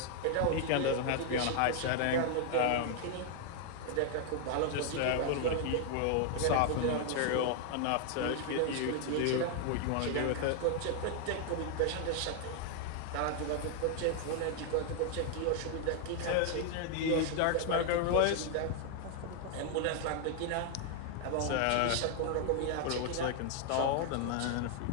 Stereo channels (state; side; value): different; both; correlation 0.00